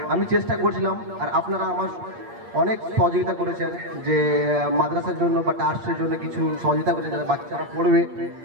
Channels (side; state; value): left; late; 8.6 ms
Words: আমি চেষ্টা করছিলাম, আর আপনারা আমার অনেক সহযোগিতা করেছেন, যে মাদ্রাসার জন্য বা ট্রাস্টের জন্য কিছু সহযোগিতা করেছেন যাতে বাচ্চারা পড়বে,